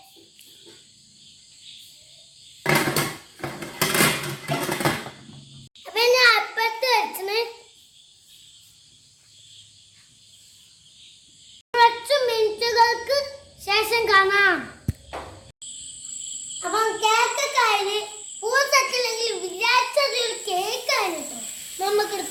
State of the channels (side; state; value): both; identical; correlation 1.00